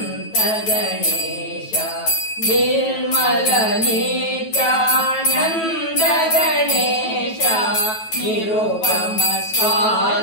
ಗಣೇಶ ನಿರ್ಮಲ ನಿತ್ಯಾನಂದ ಗಣೇಶ ನಿರುಪಮ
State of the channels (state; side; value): late; right; 9.2 ms